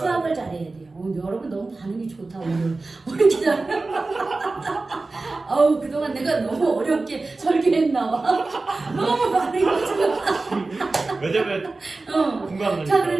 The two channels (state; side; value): quieter; left; 3.5 dB